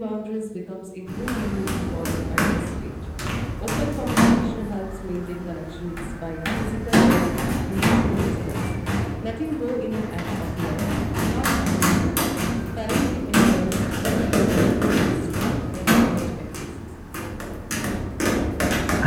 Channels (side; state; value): both; identical; correlation 1.00